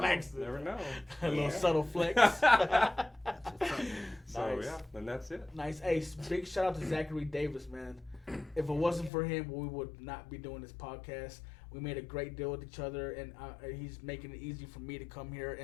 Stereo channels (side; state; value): right; drops out; at 9.1 s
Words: Never know. A little subtle flex. So Nice. yeah, and that's it. Nice. Hey, big shout out to Zachary Davis, man. If it wasn't for him, we would not be doing this podcast. We made a great deal with each other, and he's making it easy for me to come here